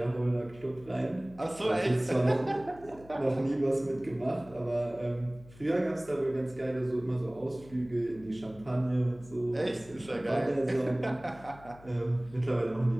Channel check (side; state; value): left; noise; hum, 21 dB below the sound